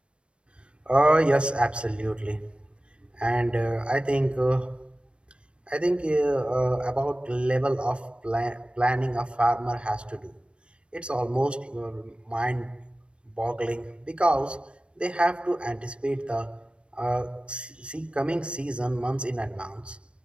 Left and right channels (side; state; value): left; late; 0.058 ms